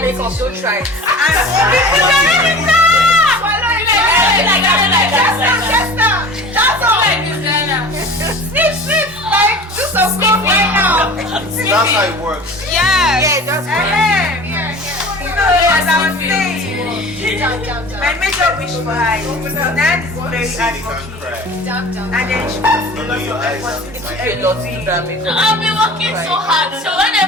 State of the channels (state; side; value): normal; both; correlation 0.40